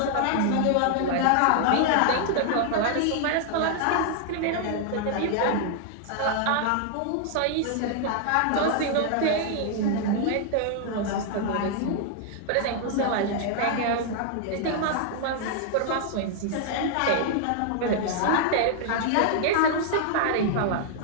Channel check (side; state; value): both; different; correlation 0.00